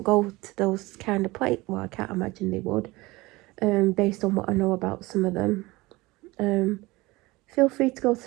go to those kind of places. Well, I can't imagine they would, based on what I know about some of them. Feel free to go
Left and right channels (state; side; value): quieter; left; 21.4 dB